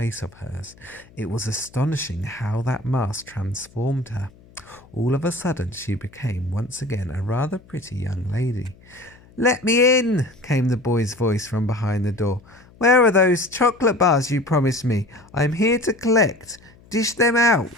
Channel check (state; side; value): noise; left; hum, 26 dB below the sound